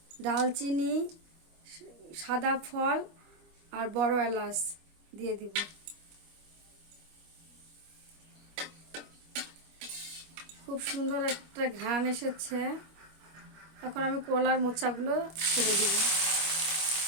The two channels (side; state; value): left; late; 25 ms